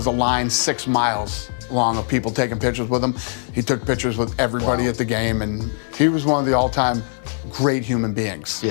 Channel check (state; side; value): silent; right; digital silence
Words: a line 6 miles long of people taking pictures with him. He took pictures with everybody at the game, and he was one of the all-time great human beings.